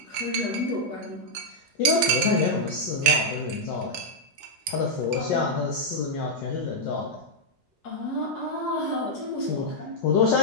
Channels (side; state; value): both; normal; correlation -0.04